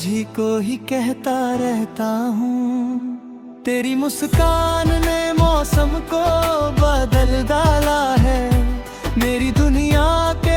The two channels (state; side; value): identical; both; correlation 1.00